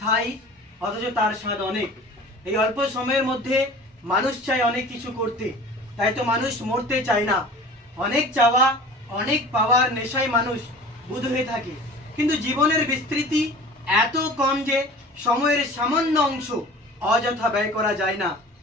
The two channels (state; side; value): normal; both; correlation 0.42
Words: অথচ তার স্বাদ অনেক। এই অল্প সময়ের মধ্যে মানুষ চায় অনেক কিছু করতে, তাই তো মানুষ মরতে চায় না। অনেক চাওয়া, অনেক পাওয়ার নেশায় মানুষ বুঁদ হয়ে থাকে, কিন্তু জীবনের বিস্তৃতি এত কম যে সময়ের সামান্য অংশ অযথা ব্যয় করা যায় না।